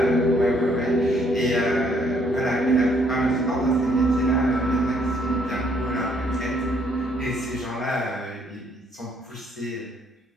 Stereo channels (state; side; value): normal; both; correlation 0.67